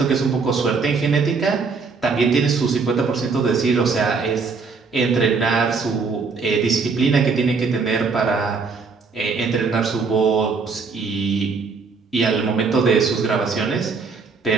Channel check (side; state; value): left; quieter; 4.7 dB